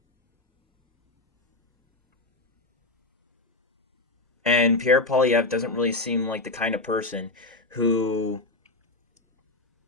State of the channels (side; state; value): right; quieter; 3.0 dB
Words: And Pierre Poilievres doesn't really seem like the kind of person who